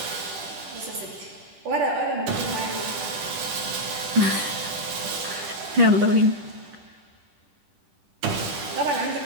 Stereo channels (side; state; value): left; late; 10 ms